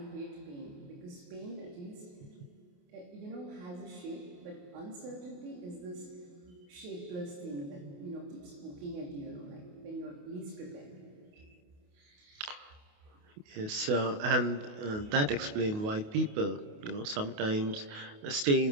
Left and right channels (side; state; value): left; late; 28 ms